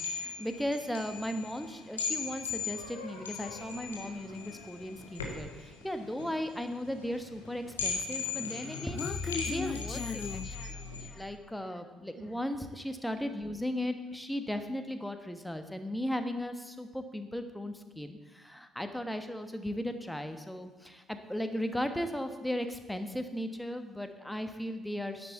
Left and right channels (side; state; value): both; normal; correlation 0.75